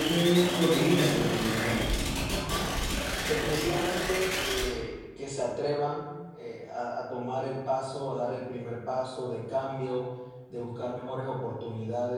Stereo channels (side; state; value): both; identical; correlation 1.00